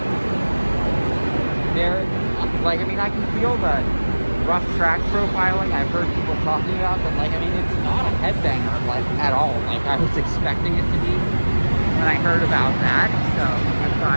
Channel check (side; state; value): both; inverted; correlation -1.00